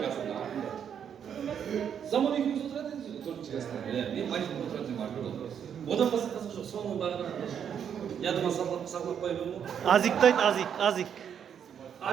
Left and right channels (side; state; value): left; quieter; 8.3 dB